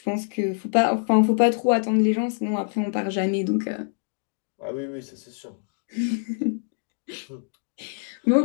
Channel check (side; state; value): right; silent; digital silence